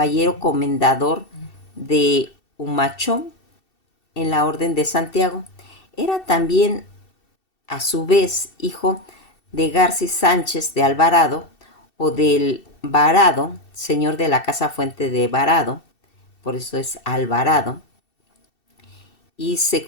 comendador de Humachón en la Orden de Santiago, era también a su vez hijo de García Sánchez de Alvarado o del Varado, señor de la Casa Fuente de Varado, por eso es Alvarado, y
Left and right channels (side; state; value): right; late; 2.7 ms